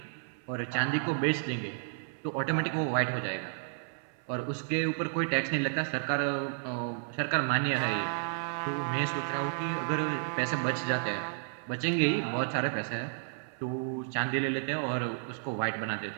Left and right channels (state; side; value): silent; left; 56 dB below the other